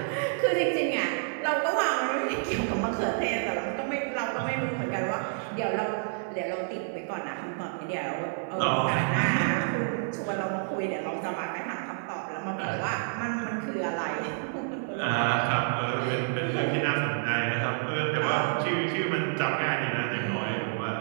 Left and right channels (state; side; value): silent; left; 56 dB below the other